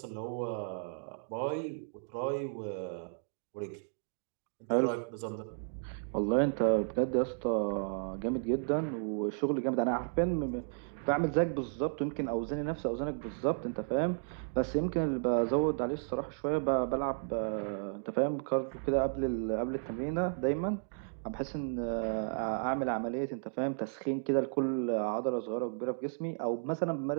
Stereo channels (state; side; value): silent; left; digital silence